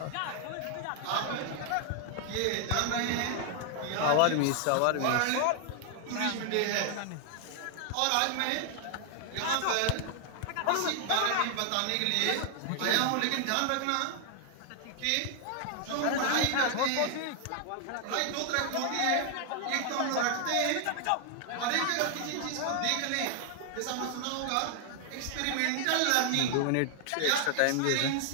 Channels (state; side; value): different; both; correlation 0.00